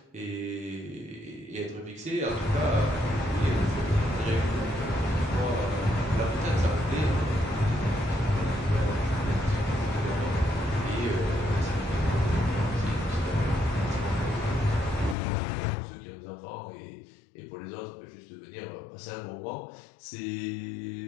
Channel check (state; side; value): drops out; right; at 15.2 s